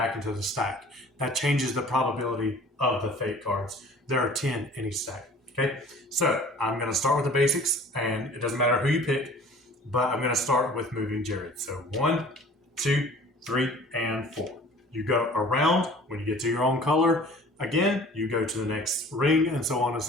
into the stack. That changes the probability of the fate cards. There are 10 in each stack. Okay, so I'm going to start with the basics, and it doesn't matter who you pick, but I'm going to start with moving Jared. So 1, 2, 3, and 4. You go around. When you get to your own color, again, you go to the next ring, and so on and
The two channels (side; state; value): both; normal; correlation 0.48